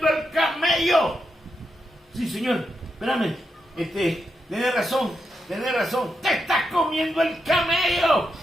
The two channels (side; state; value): both; normal; correlation 0.85